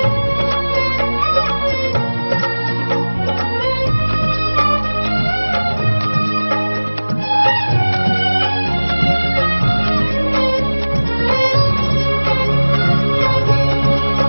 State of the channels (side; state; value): both; inverted; correlation -1.00